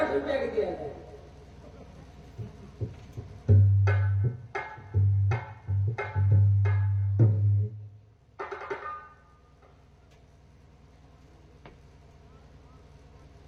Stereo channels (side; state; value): both; identical; correlation 1.00